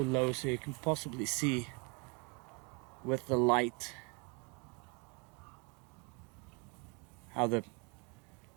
so you can possibly see with the light how the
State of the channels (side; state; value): left; quieter; 32.2 dB